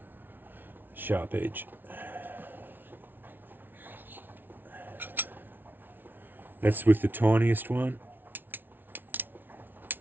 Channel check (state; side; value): late; left; 0.094 ms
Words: sharp edge. That's with the tiniest one.